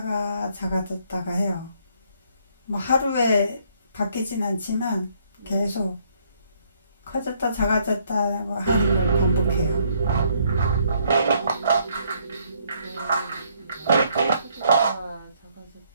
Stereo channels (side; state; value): both; inverted; correlation -0.68